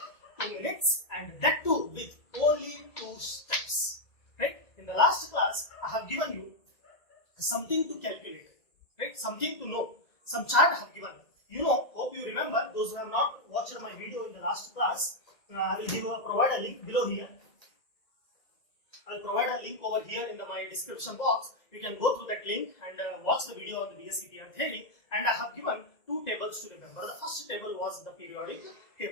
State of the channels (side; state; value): right; late; 2.0 ms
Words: 2 minutes, and that too with only 2 steps. Right? In the last class, I have given you something to calculate, right? Something to know. Some chart I have given. You know, hope you remember. Those who have not watched my video in the last class, I will provide a link below here. I will provide a link over here in my description box. You can go through that link and watch the video on the VSEPR theory. And I have given 2 tables to remember. The first table was the periodic